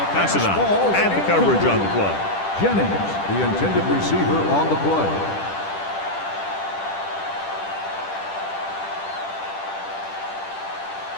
Pass it on. And the coverage on the play. Jennings, the intended receiver on the play.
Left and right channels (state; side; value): late; right; 10 ms